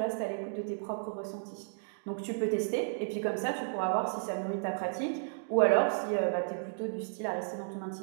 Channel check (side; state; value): left; silent; digital silence